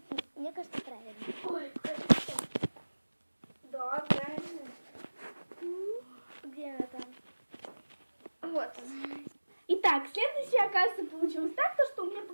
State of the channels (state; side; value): inverted; both; correlation -1.00